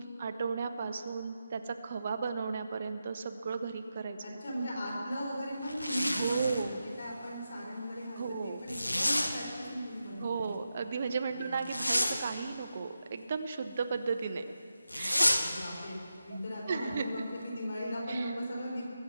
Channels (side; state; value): both; inverted; correlation -0.89